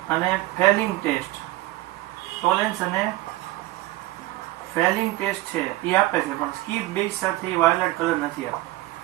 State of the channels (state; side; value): quieter; left; 17.9 dB